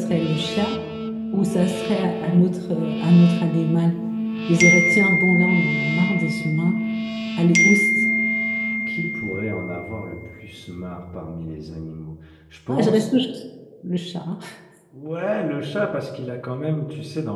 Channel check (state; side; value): identical; both; correlation 1.00